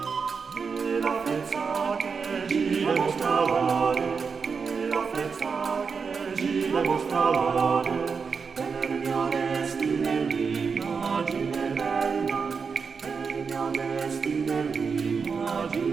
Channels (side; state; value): left; quieter; 5.5 dB